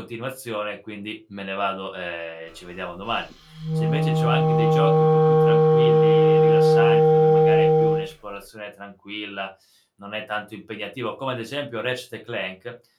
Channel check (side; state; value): both; identical; correlation 1.00